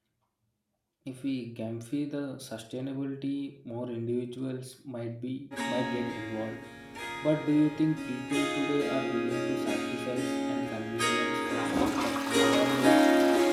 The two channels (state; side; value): identical; both; correlation 1.00